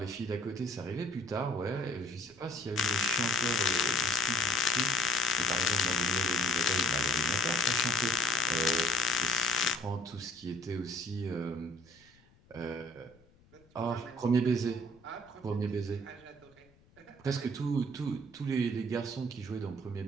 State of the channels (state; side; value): noise; left; rumble, 30 dB below the sound